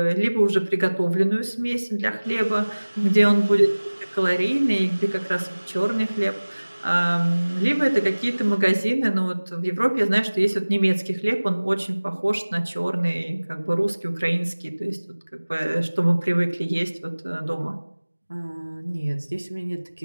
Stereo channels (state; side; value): inverted; both; correlation -1.00